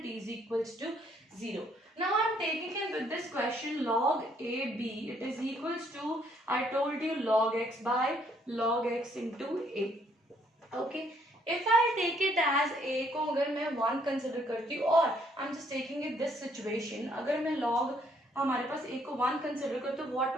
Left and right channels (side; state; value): both; normal; correlation 0.67